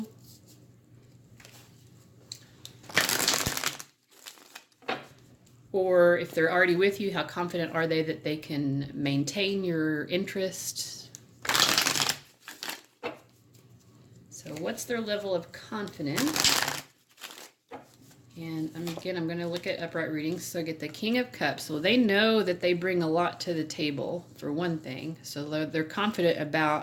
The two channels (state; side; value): identical; both; correlation 1.00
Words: Or if they're already with you, how confident are they that they can maintain your interest? So what's their level of confidence? And again, I'm going to look at upright readings. So I get the King of Cups. So they know that they bring a lot to the table, for one thing. So they're confident